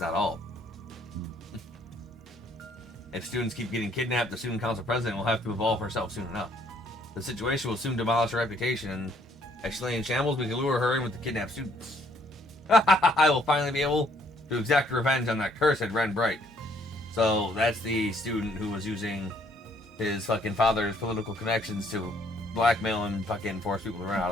not all. If students keep getting kidnapped, the student council president will have to evolve herself soon enough. The situation will soon demolish her reputation, and as she lay in shambles, we can lure her in with the kidnapped students. I will finally be able to exact revenge on that cursed Ren Bright. So that's the student who was using his fucking father's political connections to blackmail and fucking force people to run out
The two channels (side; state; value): both; normal; correlation 0.65